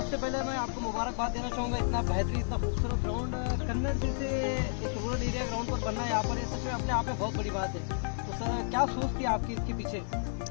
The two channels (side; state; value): right; silent; 57 dB below the other